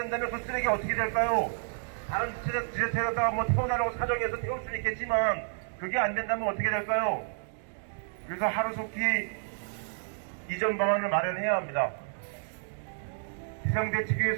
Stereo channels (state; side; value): silent; left; digital silence